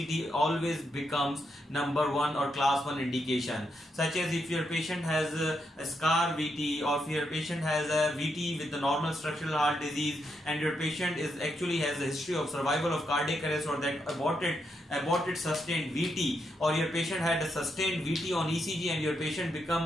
always becomes number 1 or class 1 indication. Such as if your patient has a scar VT, or if your patient has a VT with the normal structural heart disease and your patient is actually has a history of survival of cardiac arrest or that aborted sustained VT, or your patient had a sustained VT on ECG and your patient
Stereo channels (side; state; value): both; normal; correlation 0.81